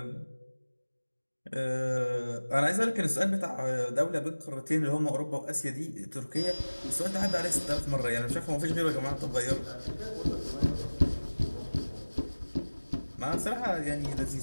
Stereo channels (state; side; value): inverted; both; correlation -1.00